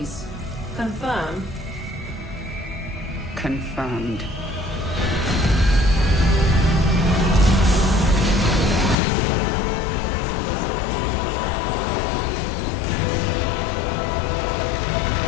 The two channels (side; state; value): right; drops out; at 9.0 s